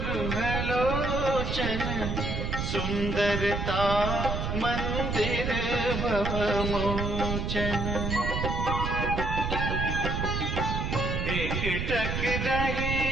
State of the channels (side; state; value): right; noise; rumble, 2 dB below the sound